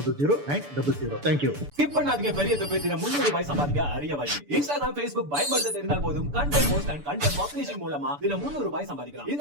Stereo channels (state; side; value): late; left; 6.9 ms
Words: Thank you. Skip பண்ணாதீங்க. பெரிய தொகையில 300 ரூபாய் சம்பாதிக்க அரிய வழி. Instagram, Facebook பயன்படுத்த தெரிந்தால் போதும். Content post and content publishing மூலமா தினம் 300 ரூபாய் சம்பாதிக்கலாம்.